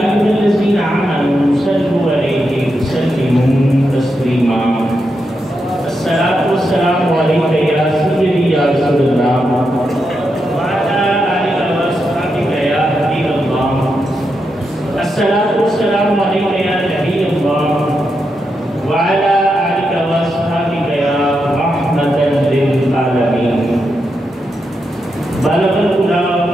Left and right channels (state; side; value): normal; both; correlation 0.85